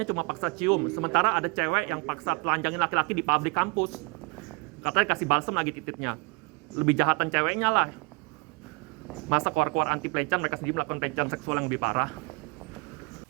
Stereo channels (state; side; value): quieter; left; 27.5 dB